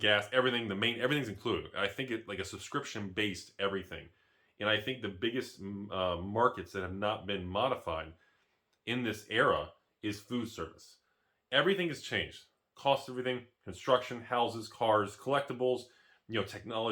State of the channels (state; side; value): identical; both; correlation 1.00